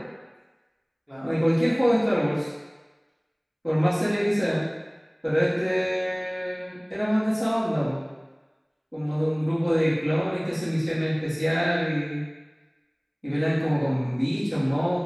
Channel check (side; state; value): both; identical; correlation 1.00